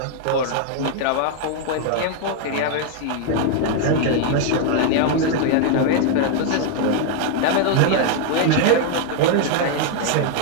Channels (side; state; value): both; different; correlation 0.00